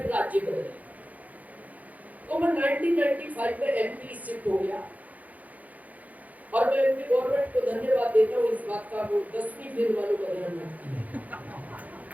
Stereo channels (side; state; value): left; late; 0.076 ms